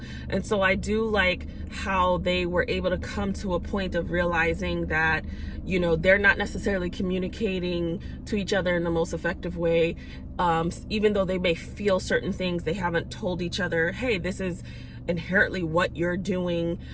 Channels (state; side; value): identical; both; correlation 1.00